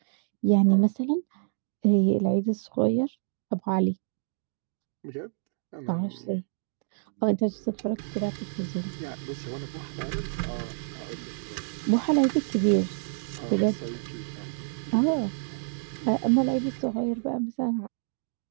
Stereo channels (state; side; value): silent; left; digital silence